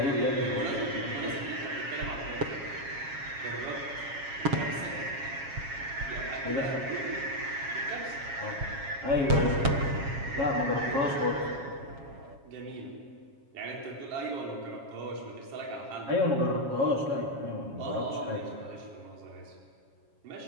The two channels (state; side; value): late; left; 7.3 ms